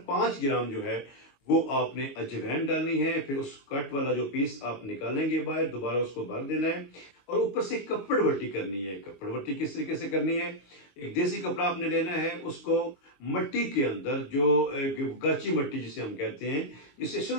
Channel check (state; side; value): late; right; 22 ms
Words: 5 ग्राम जो है वो आपने अजवाइन डालनी है। फिर उस कट वाला जो पीस आप निकालेंगे बाहर, दोबारा उसको भर देना है और ऊपर से कपड़ वट्टी करनी है। कपड़ वट्टी किस तरीके से करनी है? एक देसी कपड़ा आपने लेना है, उसको मट्टी के अंदर, जो गाची मट्टी जिसे हम कहते हैं, जिससे